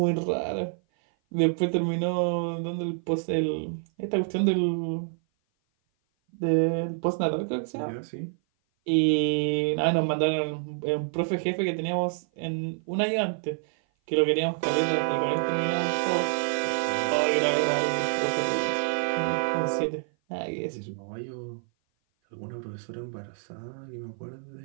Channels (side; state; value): left; silent; 56 dB below the other